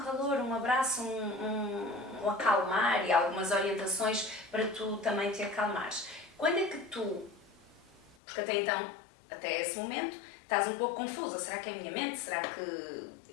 um abraço, um acalmar e algumas orientações para tu também te acalmares. Quando é que tu, porque até então, até esse momento, estás um pouco confusa, será que é a minha mente, será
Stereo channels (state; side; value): drops out; right; at 8.2 s